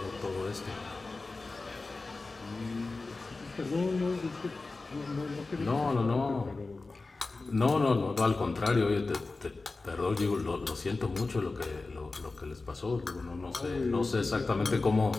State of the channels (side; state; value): right; quieter; 3.6 dB